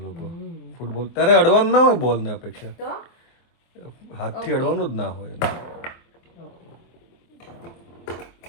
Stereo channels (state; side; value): late; right; 24 ms